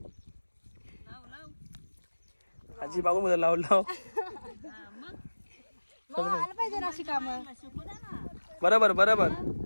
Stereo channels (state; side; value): inverted; both; correlation -1.00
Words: आजी बागू मध्ये लाव लाव. मग आलं पाहिजे ना अशी कामं. बरोबर बरोबर.